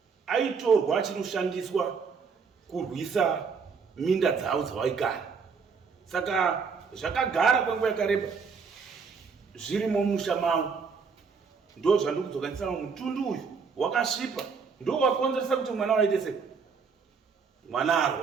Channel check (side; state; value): left; quieter; 5.5 dB